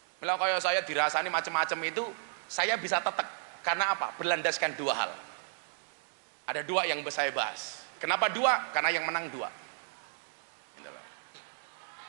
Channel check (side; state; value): left; silent; digital silence